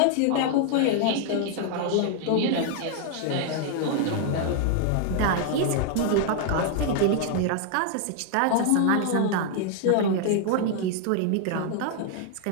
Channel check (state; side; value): different; both; correlation 0.00